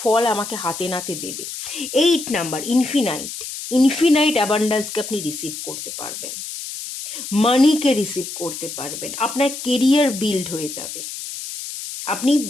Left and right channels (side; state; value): left; noise; hiss, 8 dB below the sound